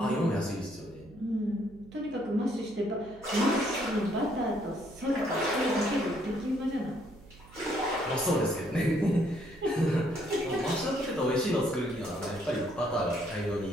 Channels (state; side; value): noise; right; hum, 22 dB below the sound